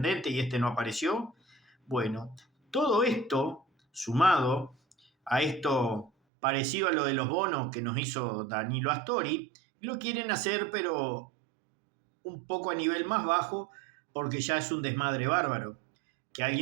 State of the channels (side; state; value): left; drops out; at 6.1 s